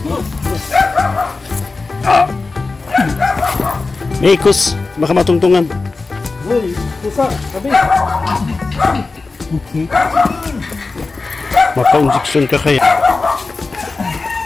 May ikos, baka matungtungan. Uy, pusa, sabi. Okay. Maka-injection ka kaya.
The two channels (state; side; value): quieter; right; 3.8 dB